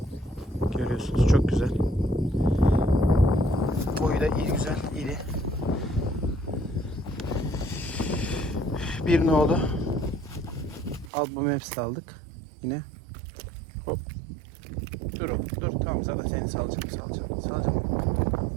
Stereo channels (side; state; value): left; drops out; at 11.1 s